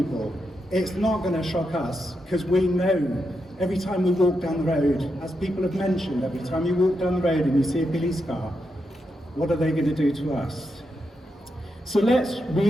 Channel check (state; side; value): normal; both; correlation 0.84